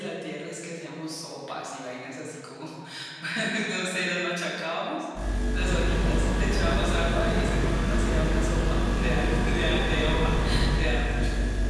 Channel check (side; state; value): both; identical; correlation 1.00